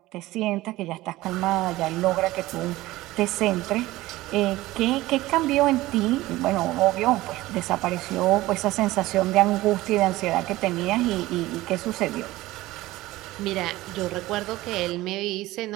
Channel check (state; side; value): quieter; left; 17.8 dB